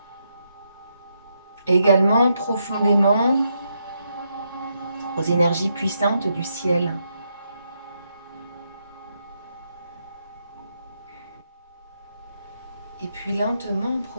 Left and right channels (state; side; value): inverted; both; correlation -0.80